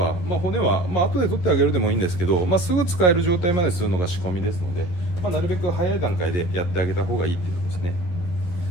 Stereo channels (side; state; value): right; late; 12 ms